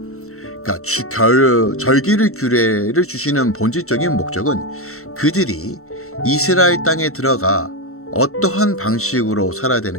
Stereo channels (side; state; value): right; late; 0.63 ms